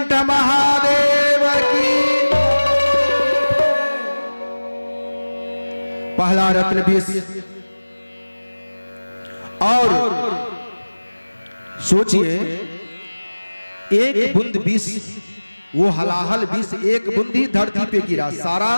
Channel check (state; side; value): inverted; both; correlation -1.00